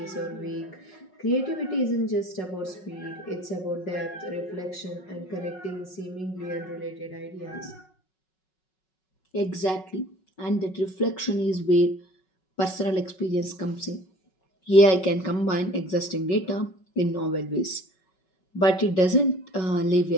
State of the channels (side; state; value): right; late; 5.4 ms